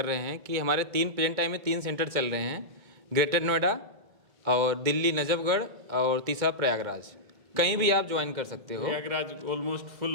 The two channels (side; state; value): left; late; 2.2 ms